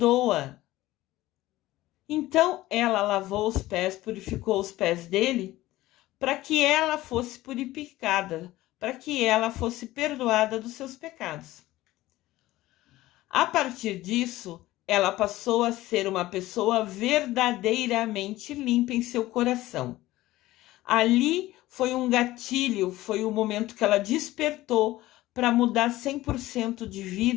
Então ela lavou os pés, purificou os pés dele, para que ela fosse purificada, para que ela fosse perdoada dos seus pecados. A partir disso, ela passou a ser uma pessoa verdadeiramente limpa em seu coração. Ali foi um gatilho, foi o momento que ela despertou para mudar 100% de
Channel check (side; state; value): right; quieter; 16.8 dB